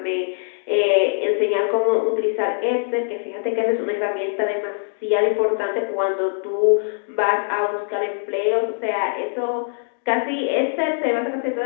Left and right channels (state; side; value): silent; right; digital silence